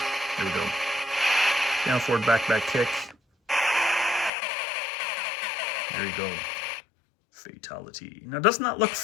there we go. Down, forward, back, kick. There you go. Fatality. Now, doesn't that look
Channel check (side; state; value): right; drops out; at 4.3 s